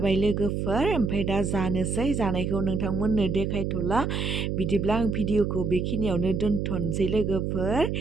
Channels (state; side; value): noise; right; hum, 1 dB below the sound